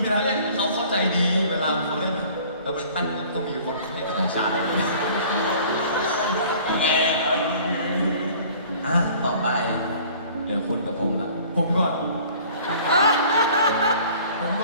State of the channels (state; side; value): inverted; both; correlation -0.50